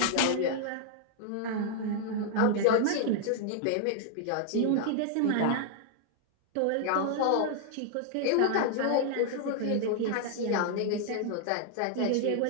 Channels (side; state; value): both; different; correlation 0.00